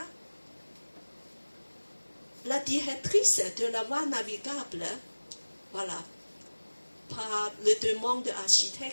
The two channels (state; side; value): inverted; both; correlation -1.00